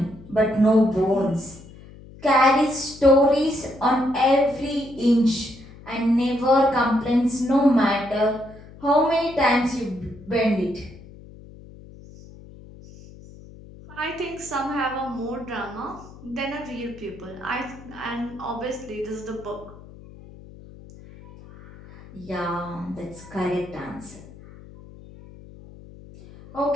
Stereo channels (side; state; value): left; noise; hum, 19 dB below the sound